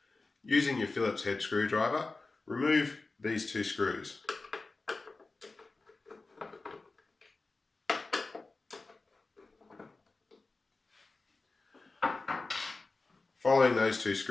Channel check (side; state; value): right; quieter; 3.6 dB